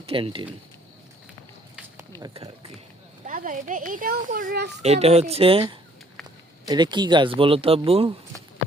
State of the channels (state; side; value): normal; both; correlation 0.62